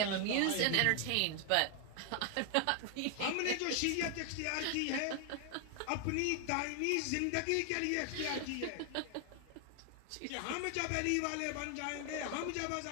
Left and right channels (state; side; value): different; both; correlation 0.00